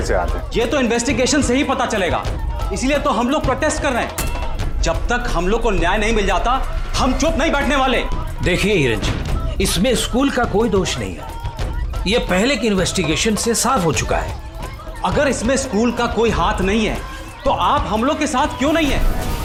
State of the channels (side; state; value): both; identical; correlation 1.00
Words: हाथ है? ये तो इन्वेस्टिगेशन से ही पता चलेगा, इसीलिए तो हम लोग प्रोटेस्ट कर रहे हैं। जब तक हम लोग को न्याय नहीं मिल जाता, हम चुप नहीं बैठने वाले। देखिए हिरन जी, इसमें स्कूल का कोई दोष नहीं है, ये पहले की इन्वेस्टिगेशन से साफ हो चुका है। अगर इसमें स्कूल का कोई हाथ नहीं है तो आप हम लोग के साथ क्यों नहीं है?